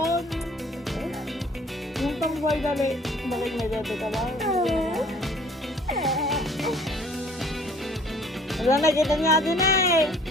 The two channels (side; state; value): both; normal; correlation 0.55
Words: Yung pang boy dali. Bakit may dati ka ba? Wala, nakita niya din eh.